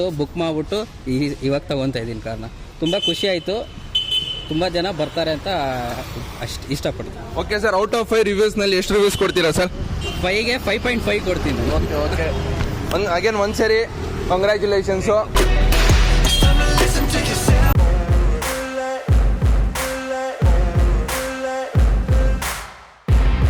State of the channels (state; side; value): identical; both; correlation 1.00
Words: ಬುಕ್ ಮಾಡ್ಬಿಟ್ಟು ಇವಾಗ ತಗೊಂತ ಇದ್ದೀನಿ ಕಾರ್ನ. ತುಂಬ ಖುಷಿ ಆಯಿತು. ತುಂಬ ಜನ ಬರ್ತಾರೆ ಅಂತ ಅಷ್ಟು ಇಷ್ಟಪಡ್ತೀನಿ. ಓಕೆ ಸರ್, ಔಟ್ ಆಫ್ 5 ರಿವ್ಯೂಸ್ನಲ್ಲಿ ಎಷ್ಟು ರಿವ್ಯೂಸ್ ಕೊಡ್ತೀರಾ ಸರ್? 5ಗೆ 5.5 ಕೊಡ್ತೀನಿ. ಓಕೆ ಅಗೇನ್ ಒಂದ್ಸರಿ ಕಂಗ್ರ್ಯಾಚುಲೇಷನ್ಸು.